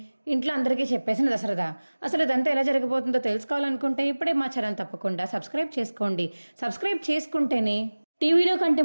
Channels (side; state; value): both; inverted; correlation -1.00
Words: ఇంట్లో అందరికీ చెప్పేసిన దశరథ. అసలు ఇదంతా ఎలా జరగబోతుందో తెలుసుకోవాలనుకుంటే ఇప్పుడే మా ఛానల్ తప్పకుండా సబ్స్క్రైబ్ చేసుకోండి. సబ్స్క్రైబ్ చేసుకుంటేనే టీవీలో కంటే